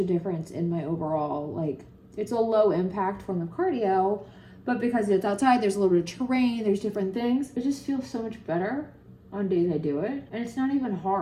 difference in my overall, like, it's a low impact form of cardio, but because it's outside, there's a little bit of terrain, there's different things. It just feels so much better on days I do it. And it's not even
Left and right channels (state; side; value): identical; both; correlation 1.00